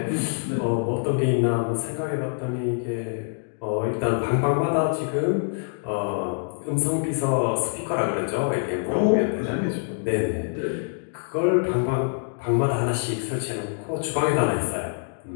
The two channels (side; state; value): right; silent; digital silence